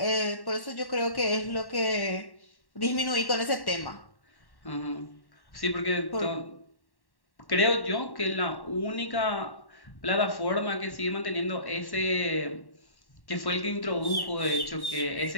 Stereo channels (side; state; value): right; late; 1.1 ms